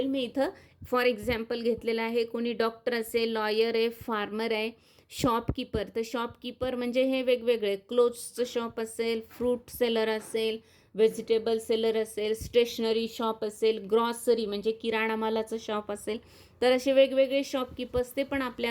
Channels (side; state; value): both; identical; correlation 1.00